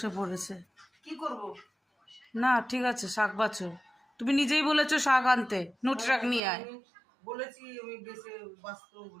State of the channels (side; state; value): left; drops out; at 6.4 s